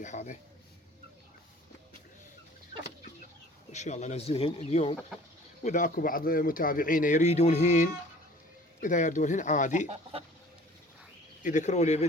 هذا، ان شاء الله انزلهن اليوم. واذا اكو بعض متابعينا يريدونهن، اذا يردونهن عادي يذكروا لي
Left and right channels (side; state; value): both; normal; correlation 0.49